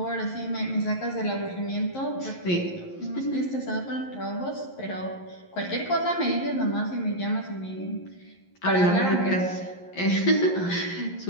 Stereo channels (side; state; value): right; late; 11 ms